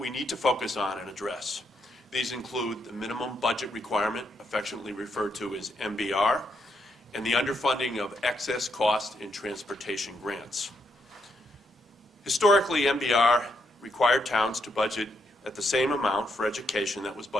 need to focus on and address. These include the minimum budget requirement, affectionately referred to as MBR, and the underfunding of excess cost in transportation grants. Historically, MBR required towns to budget at the same amount for education that was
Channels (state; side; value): normal; both; correlation 0.78